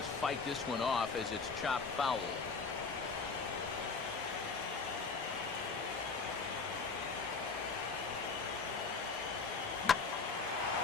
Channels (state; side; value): quieter; right; 4.6 dB